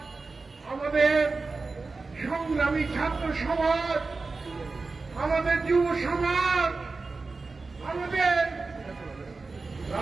আমাদের সংগ্রামী ছাত্র সমাজ, আমাদের যুব সমাজ, আমাদের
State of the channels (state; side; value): quieter; left; 3.9 dB